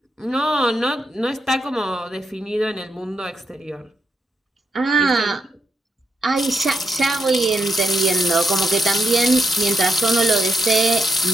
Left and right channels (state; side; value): normal; both; correlation 0.81